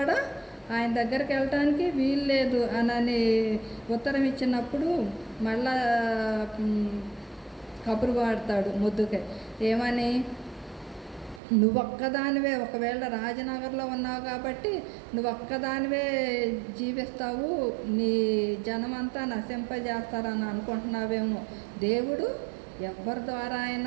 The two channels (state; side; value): drops out; left; at 11.4 s